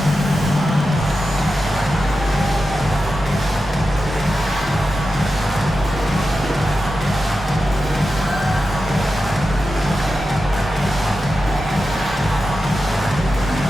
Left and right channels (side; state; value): both; normal; correlation 0.91